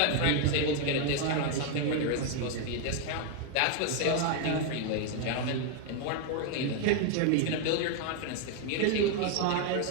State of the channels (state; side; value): different; both; correlation 0.01